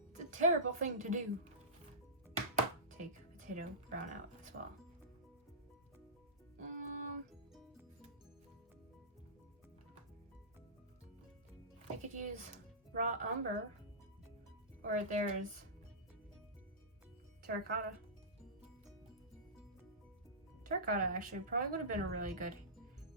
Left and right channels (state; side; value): normal; both; correlation -0.19